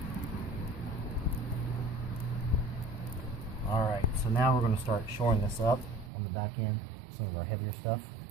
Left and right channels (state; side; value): drops out; left; at 6.1 s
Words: Alright, so now we're going to start shoring this up on the back end, some of our heavier stuff.